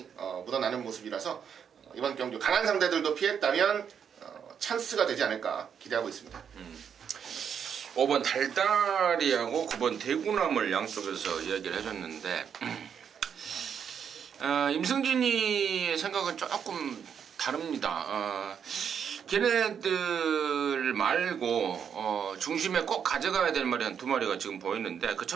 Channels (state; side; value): quieter; left; 7.7 dB